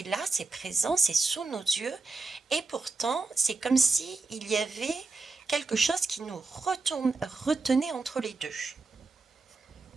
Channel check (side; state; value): left; quieter; 3.8 dB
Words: là, c'est présent, c'est sous nos yeux. Et pourtant, c'est comme si il y avait quelque chose qui nous retenait entre les deux.